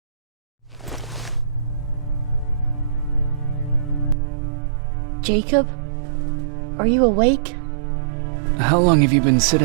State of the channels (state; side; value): drops out; left; at 4.2 s